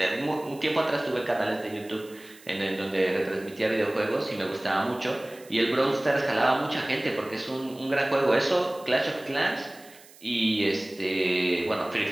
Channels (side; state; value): right; noise; hiss, 23 dB below the sound